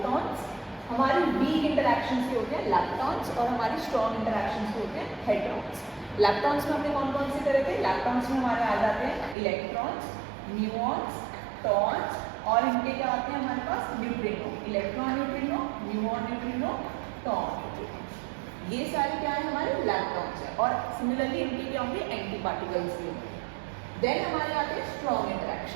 हमारी वीक इंटरैक्शंस के होते हैं लैप्टॉन्स और हमारी स्ट्रॉन्ग इंटरैक्शंस के होते हैं हेड्रॉन्स। लैप्टॉन्स में हमने कौन कौन से करे थे? लैप्टॉन्स में हमारे आ जाते हैं इलेक्ट्रॉन्स, न्यूऑन्स, टॉन्स और इनके क्या आते हैं हमारे पास? Neutrino. Electron neutrino, muon neutrino, tauon neutrino. ये सारे क्या है? हमारे लैप्टॉन्स है। और सिमिलरली इनके क्या होंगे? एंटी पार्टिकल्स भी होंगे। देन हमारे आते हैं स्ट्रॉन्ग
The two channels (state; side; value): drops out; left; at 9.3 s